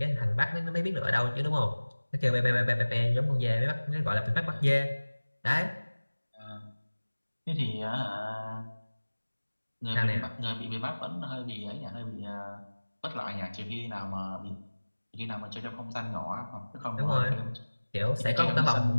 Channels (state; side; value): inverted; both; correlation -1.00